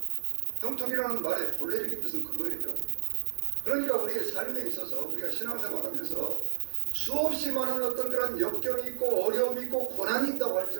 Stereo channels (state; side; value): silent; left; 58 dB below the other